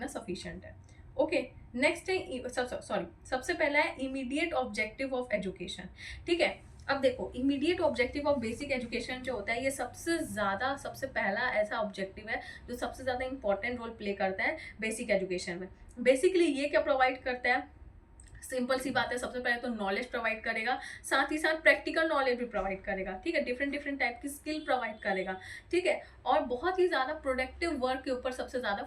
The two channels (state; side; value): identical; both; correlation 1.00